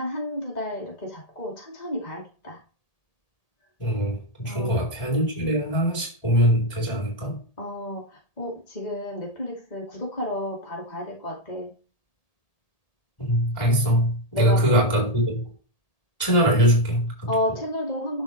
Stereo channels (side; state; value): right; late; 1.8 ms